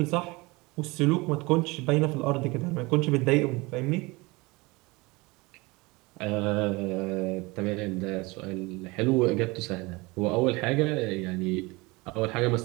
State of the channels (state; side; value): quieter; left; 24.1 dB